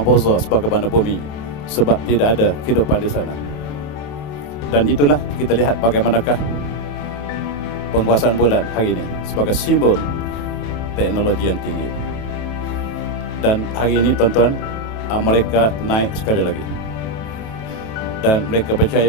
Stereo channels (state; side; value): late; right; 27 ms